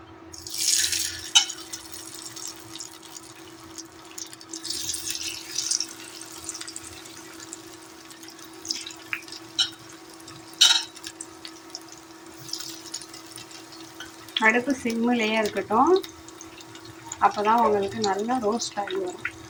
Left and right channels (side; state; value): both; identical; correlation 1.00